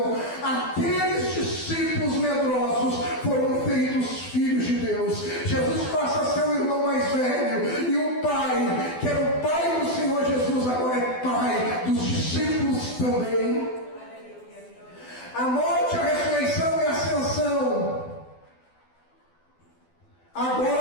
aqueles discípulos medrosos foram feitos filhos de Deus. Jesus passa a ser o irmão mais velho, e o Pai, que era o Pai do Senhor Jesus, agora é Pai dos discípulos também. A morte, a ressurreição e a ascensão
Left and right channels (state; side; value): late; right; 12 ms